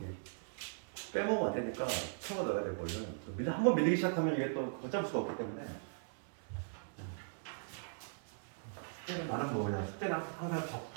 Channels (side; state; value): left; silent; digital silence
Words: 빼먹으면 안 되니까 채워 넣어야 돼. 원래 한번 밀리기 시작하면 이게 또 걷잡을 수가 없기 때문에. 숙제는 나는 뭐냐, 숙제는 항상